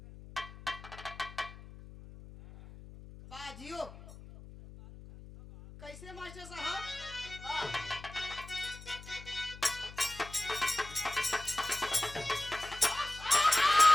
बाजियो कैसे मास्टर साहब?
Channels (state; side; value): noise; left; hum, 16 dB below the sound